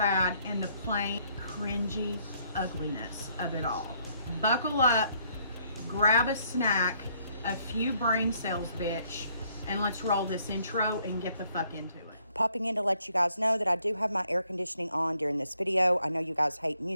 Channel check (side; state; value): both; inverted; correlation -0.68